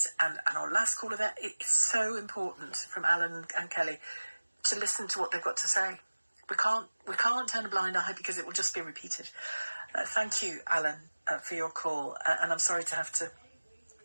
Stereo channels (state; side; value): inverted; both; correlation -1.00